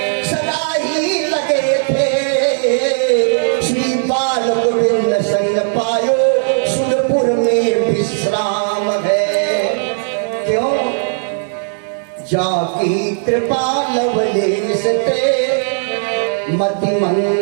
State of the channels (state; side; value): silent; left; 58 dB below the other